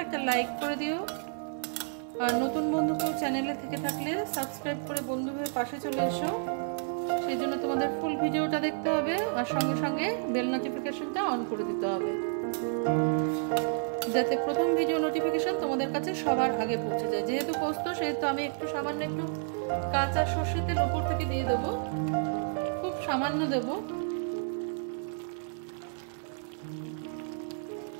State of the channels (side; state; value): left; silent; 57 dB below the other